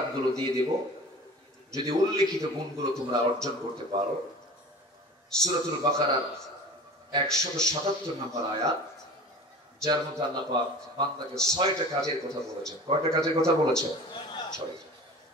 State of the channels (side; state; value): both; normal; correlation 0.40